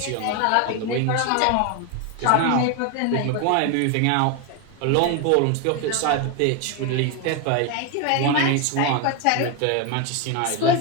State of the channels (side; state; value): both; different; correlation 0.01